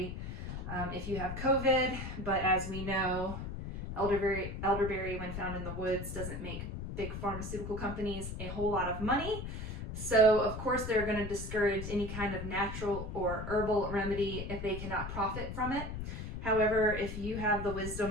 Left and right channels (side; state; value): left; noise; rumble, 6 dB below the sound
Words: if you have COVID, but as we know, elderberry when found in the woods doesn't make big pharmaceutical companies a whole lot of money. So of course they're going to discourage any kind of natural or herbal remedy if they cannot profit from it. However, if you have the